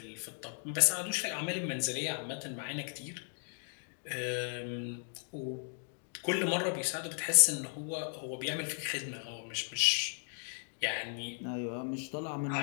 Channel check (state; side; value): silent; right; 54 dB below the other